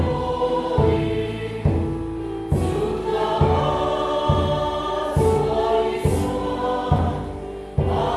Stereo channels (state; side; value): identical; both; correlation 1.00